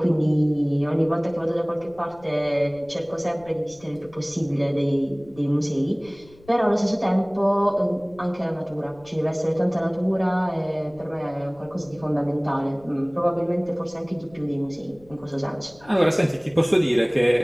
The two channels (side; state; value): left; noise; rumble, 25 dB below the sound